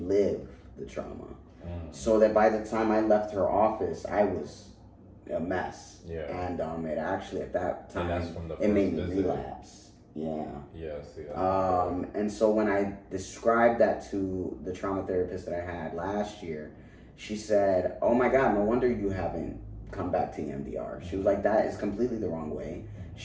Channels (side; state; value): both; identical; correlation 1.00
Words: the trauma. So that by the time I left her office, I was a mess. Yeah. And it actually at that time, And that's from the it made first me visit? relapse. Yeah. Yes. And so when I described that to the trauma therapist that I had last year, she said, "Oh my God, no wonder you haven't come back to EMDR." She was like, "That is completely the wrong way.